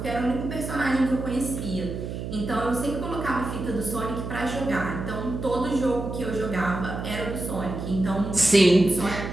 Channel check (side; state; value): right; noise; hum, 6 dB below the sound